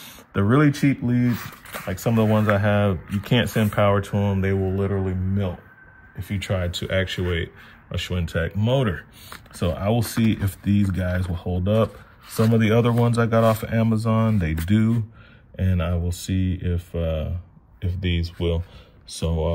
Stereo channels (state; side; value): identical; both; correlation 1.00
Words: The really cheap leads, like some of the ones I have, you can't send power to them. They will literally melt if you try to actuate a Schwintek motor. So I will see if these guys will hold up. Some of the other ones I got off of Amazon, they do, and I will see if these will.